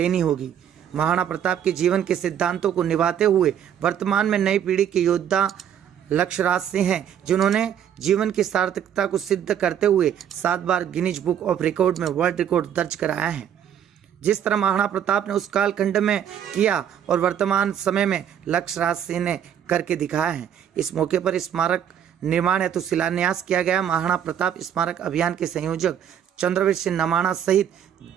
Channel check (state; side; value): quieter; left; 9.3 dB